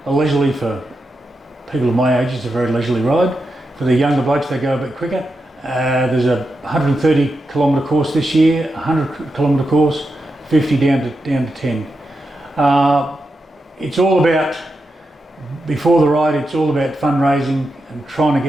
leisurely, for people of my age, it's a very leisurely ride. For the younger blokes, they go a bit quicker. There's a 130 kilometre course this year, 100 kilometre course, 50 down to 10. It's all about, before the ride, it's all about fundraising and trying to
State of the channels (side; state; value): both; normal; correlation 0.88